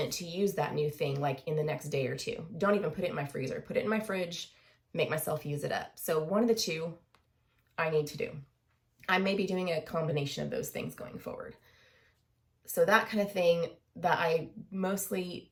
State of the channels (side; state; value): both; identical; correlation 1.00